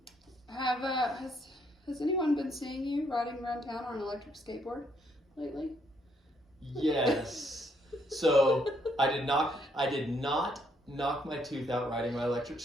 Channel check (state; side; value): normal; both; correlation 0.71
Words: Has anyone been seeing you riding around town on an electric skateboard lately? Yes. So I did not knock my tooth out riding my electric